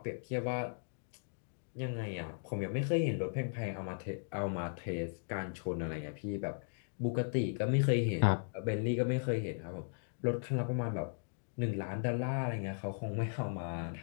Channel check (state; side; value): silent; right; digital silence